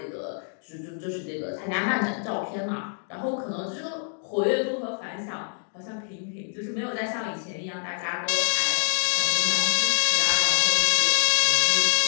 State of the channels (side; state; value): right; silent; 61 dB below the other